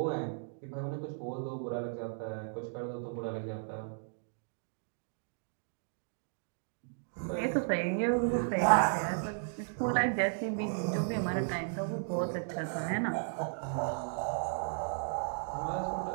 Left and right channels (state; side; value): silent; left; digital silence